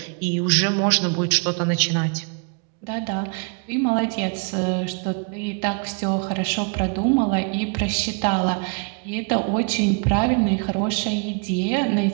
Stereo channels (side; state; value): left; quieter; 36.5 dB